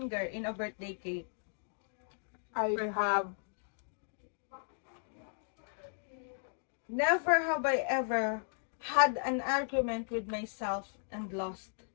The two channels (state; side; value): silent; right; digital silence